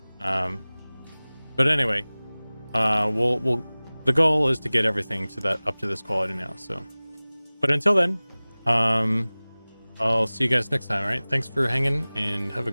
but anyway, we'll the goal is to get everything to that up to this quality now. So, but until then, I'll see you guys next time. All right, thanks for hanging, and have a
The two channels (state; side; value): inverted; both; correlation -1.00